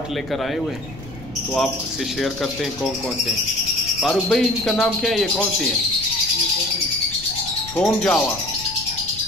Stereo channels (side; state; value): left; noise; rumble, 16 dB below the sound